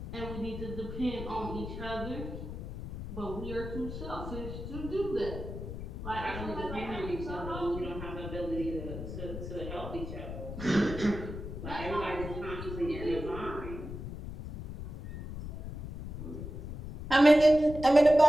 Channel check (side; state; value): left; noise; rumble, 8 dB below the sound